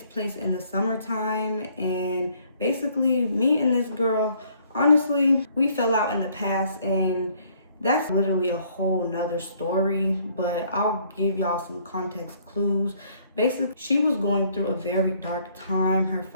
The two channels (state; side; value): inverted; both; correlation -0.63